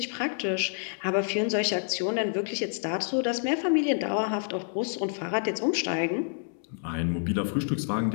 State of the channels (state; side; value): silent; right; 59 dB below the other